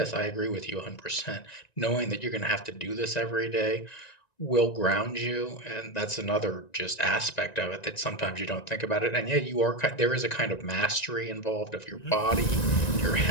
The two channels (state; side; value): late; right; 1.9 ms